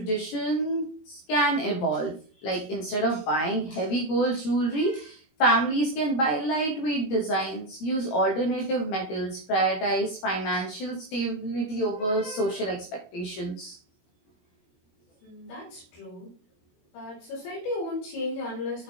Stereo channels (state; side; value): late; right; 19 ms